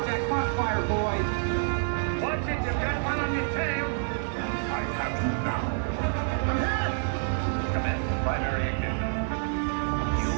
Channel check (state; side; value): silent; left; digital silence